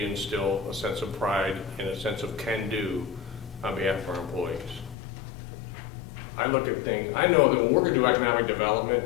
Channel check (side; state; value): right; drops out; at 5.0 s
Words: a sense of pride and a sense of can-do on behalf of our employees. I look at things, I know that when we're gonna do economic